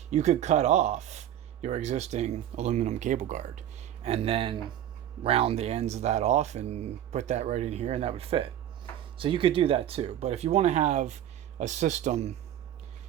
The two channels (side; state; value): left; quieter; 11.3 dB